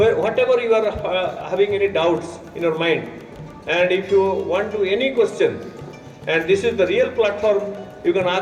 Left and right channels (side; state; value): both; identical; correlation 1.00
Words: you are having any doubts in your mind, and if you want to any question, and this is the real platform, you can